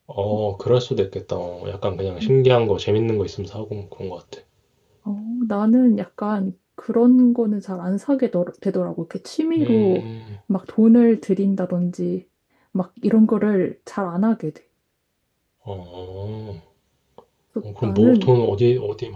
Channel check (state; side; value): identical; both; correlation 1.00